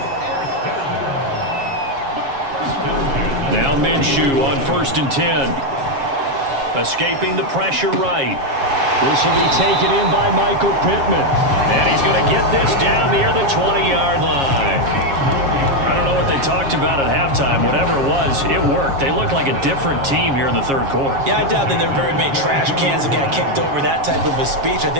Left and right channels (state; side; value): late; left; 7.3 ms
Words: Now Minshew on 1st and 10. Escaping the pressure right. This will be taken in by Michael Pittman. And he's going to get this down near the 20-yard line. I don't know what they talked about at halftime. Whatever it was, it worked. They looked like a different team here in the third quarter. Yeah, I doubt that there were very many trash cans that got kicked over, that type of a speech. I